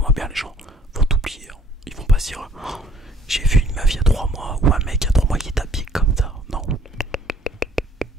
bien, les gens vont t'oublier. Ils vont pas se dire, oh, j'ai vu une meuf il y a 3 mois ou un mec il y a 3 mois qui est habillé comme ça. Non.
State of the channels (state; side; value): normal; both; correlation 0.60